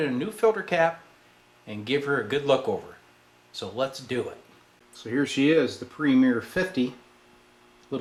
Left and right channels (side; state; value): both; identical; correlation 1.00